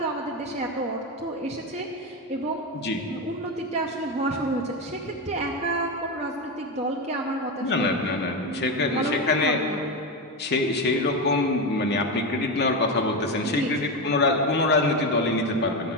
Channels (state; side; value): normal; both; correlation 0.14